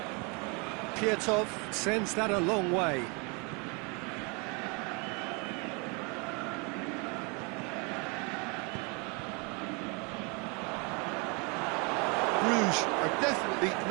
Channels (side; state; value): left; quieter; 31.7 dB